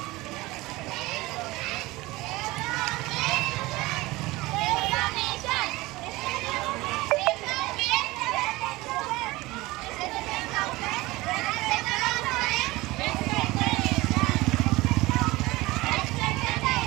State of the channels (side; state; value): left; quieter; 20.4 dB